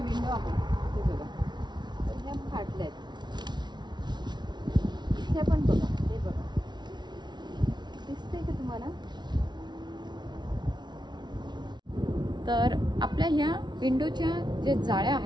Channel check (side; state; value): left; late; 0.21 ms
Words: विंडो आहेत हे बघा, तर ह्या फाटल्या आहेत. ह्या पण बघा, हे बघा, दिसतंय का तुम्हाला? तर आपल्या ह्या विंडोच्या ज्या जाळ्या